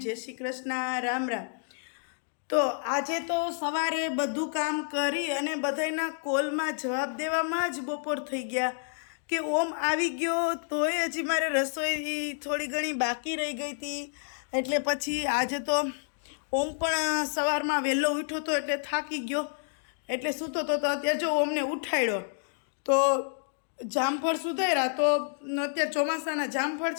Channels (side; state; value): right; silent; digital silence